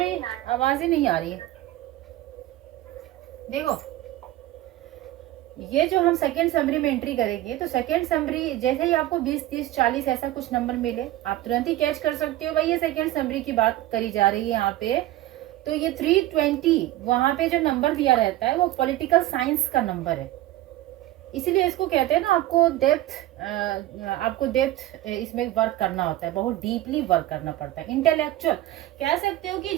आवाज ही नहीं आ रही है। देखो, ये जो हम सेकेंड समरी में एंट्री करेंगे, तो सेकेंड समरी जैसे ही आपको 20, 30, 40 ऐसा कुछ नंबर मिले, आप तुरंत ही कैच कर सकते हो भाई ये सेकेंड समरी की बात करी जा रही है यहाँ पे। तो ये 320 वहां पे जो नंबर दिया रहता है वो पॉलिटिकल साइंस का नंबर है, इसीलिए इसको कहते हैं ना, आपको डेप्थ इसमें वर्क करना होता है, बहुत डीपली वर्क करना पड़ता है। इंटेलेक्चुअल कह सकते हो कि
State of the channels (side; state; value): left; quieter; 15.2 dB